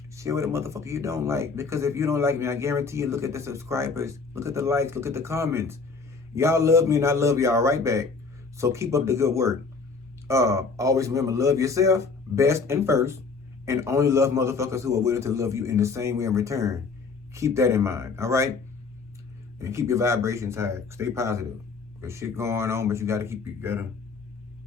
Share with a motherfucker you don't like. Because if you don't like me, I guarantee you, look at the subscribers, look at the likes, look at the comments. Y'all love me and I love y'all right back. So keep up the good work. Always remember, love yourself best and first, and only love motherfuckers who are willing to love you in the same way in return. Keep that in mind, all right? And keep your vibrations high. Stay positive. There's shit going on, but you gotta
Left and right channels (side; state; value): right; quieter; 4.6 dB